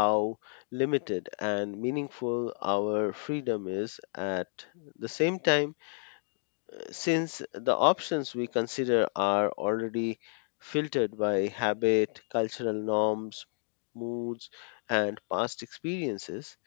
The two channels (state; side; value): silent; right; 57 dB below the other